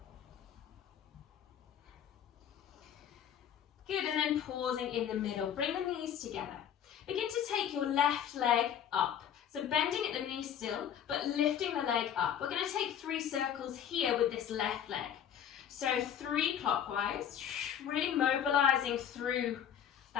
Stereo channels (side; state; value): right; quieter; 9.3 dB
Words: Good, and then pausing in the middle. Bring the knees together. Begin to take your left leg up. So bending at the knee still, but lifting the leg up. We're going to take 3 circles here with this left leg. So 3 clockwise, really mobilizing through